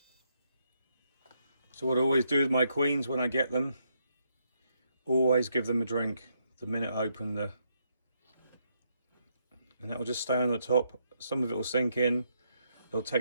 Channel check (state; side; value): inverted; both; correlation -0.77